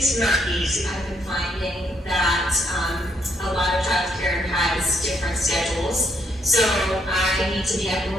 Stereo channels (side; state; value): both; normal; correlation 0.73